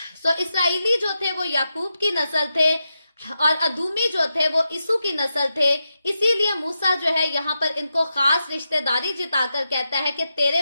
सो इसराइली जो थे वो याकूब की नस्ल थे और अदूमी जो थे वो इसू की नस्ल थे। इसीलिए मूसा जो है यहाँ पर इनको खास रिश्तेदारी जिताकर कहता है कि तेरे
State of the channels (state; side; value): inverted; both; correlation -0.88